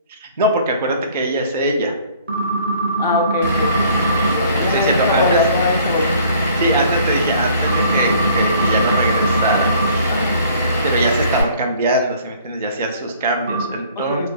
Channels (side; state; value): both; inverted; correlation -0.55